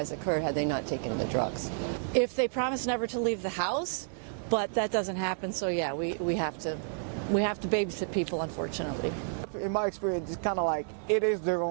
occur had they not taken the drugs. If they promise never to leave the house, but that doesn't happen, so yeah, we have to babysit people, unfortunately. In my experience, it's kind of like it is their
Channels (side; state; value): left; silent; digital silence